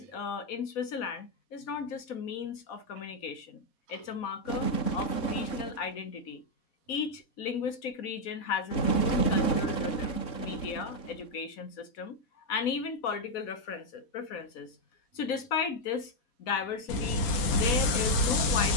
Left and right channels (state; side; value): late; right; 4.1 ms